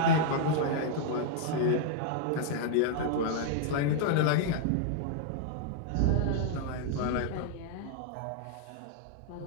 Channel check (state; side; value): different; both; correlation -0.01